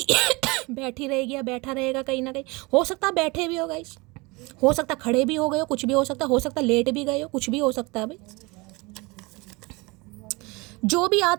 बैठी रहेगी या बैठा रहेगा कहीं ना कहीं। हो सकता है बैठे भी हो गाइस, हो सकता है खड़े भी हो गए हो, कुछ भी हो सकता है लेट भी गए हो, कुछ भी हो सकता है भाई। जो भी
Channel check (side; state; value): left; quieter; 25.4 dB